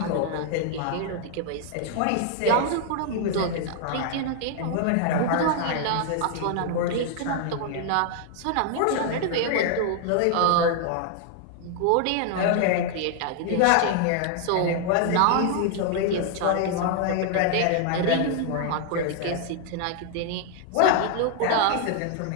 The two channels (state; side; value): different; both; correlation 0.00